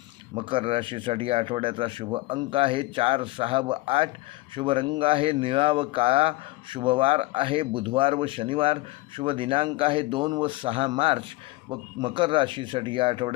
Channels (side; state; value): right; quieter; 20.3 dB